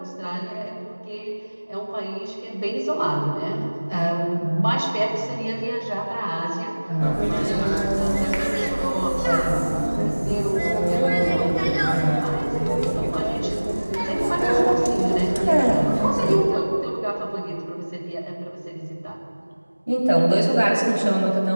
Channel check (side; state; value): both; inverted; correlation -1.00